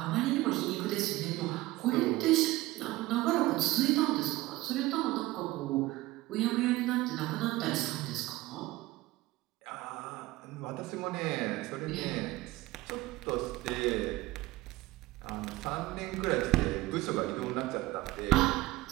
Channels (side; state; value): left; quieter; 18.6 dB